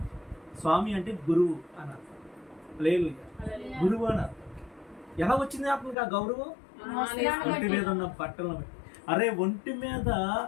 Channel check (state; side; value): drops out; right; at 6.0 s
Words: స్వామి అంటే గురువు అని అర్థం. హల్లెలూయా, గురువు అని అర్థం. ఎలా వచ్చింది అతనికి ఆ గౌరవం? ఒంటి మీద ఉన్న బట్టలను బట్టి. అరే, ఒంటి మీద